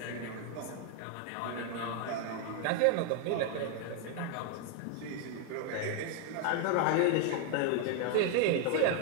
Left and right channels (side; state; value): both; different; correlation 0.01